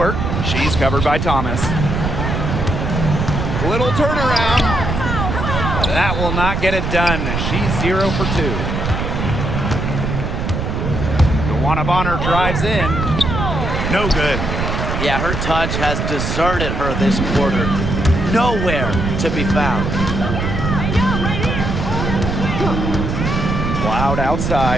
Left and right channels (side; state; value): right; noise; rumble, 2 dB below the sound